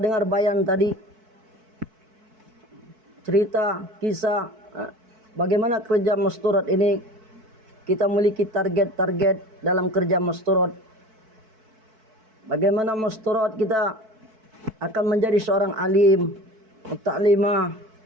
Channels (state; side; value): late; left; 4.6 ms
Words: bayan tadi, cerita, kisah bagaimana kerja masturat ini. Kita memiliki target-target dalam kerja masturat. Bagaimana masturat kita akan menjadi seorang alim, muta'limah,